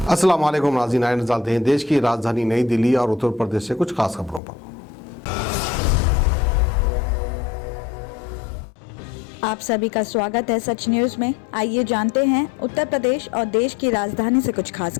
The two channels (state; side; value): drops out; right; at 4.4 s